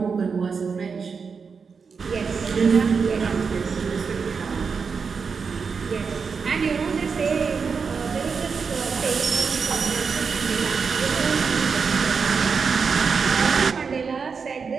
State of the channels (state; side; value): quieter; left; 5.5 dB